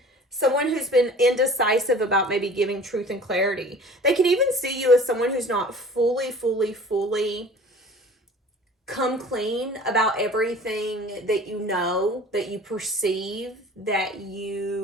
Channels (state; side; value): normal; both; correlation 0.45